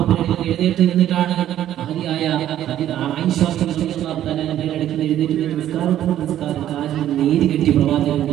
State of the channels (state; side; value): quieter; left; 11.9 dB